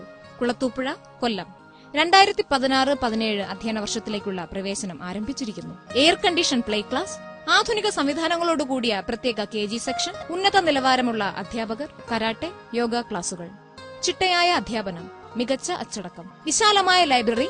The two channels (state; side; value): identical; both; correlation 1.00